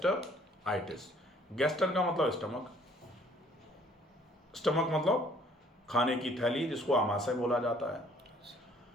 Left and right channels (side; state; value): both; normal; correlation 0.59